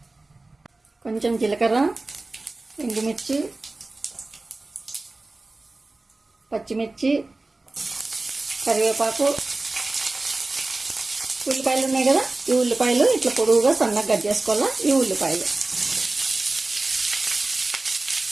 కొంచెం జీలకర్ర, ఎండుమిర్చి, పచ్చిమిర్చి, కరివేపాకు, ఉల్లిపాయలు ఉన్నాయి కదా, ఈ ఉల్లిపాయలు ఇట్లా పొడుగుగా సన్నగా కట్ చేసుకోవాలా. ఈ ఉల్లిపాయలు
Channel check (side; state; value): left; quieter; 3.1 dB